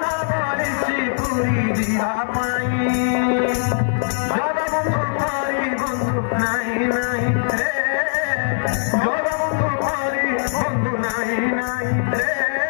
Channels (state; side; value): silent; right; digital silence